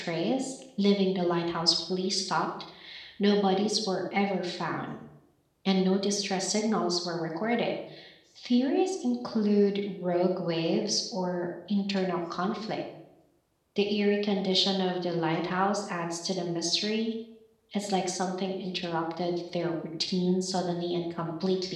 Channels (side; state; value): both; identical; correlation 1.00